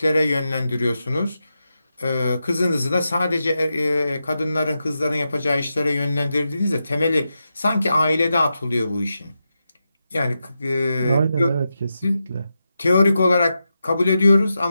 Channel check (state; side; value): inverted; both; correlation -0.88